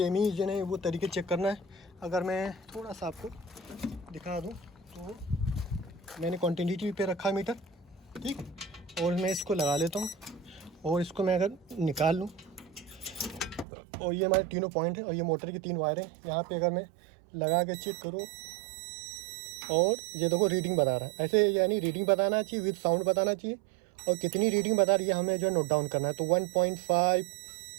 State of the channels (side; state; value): left; drops out; at 13.7 s